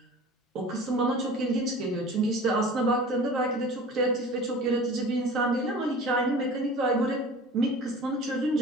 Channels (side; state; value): both; normal; correlation 0.40